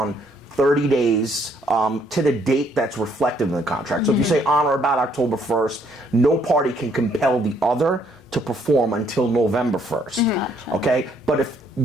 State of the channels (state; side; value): normal; both; correlation 0.67